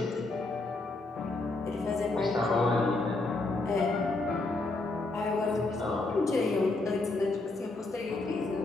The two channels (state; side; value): quieter; right; 3.2 dB